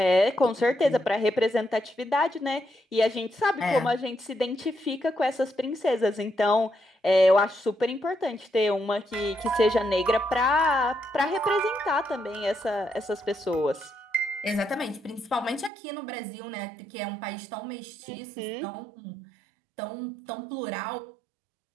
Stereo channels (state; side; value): drops out; left; at 15.7 s